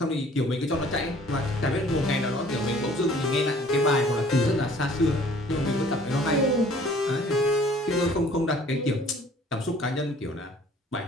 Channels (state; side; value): normal; both; correlation 0.54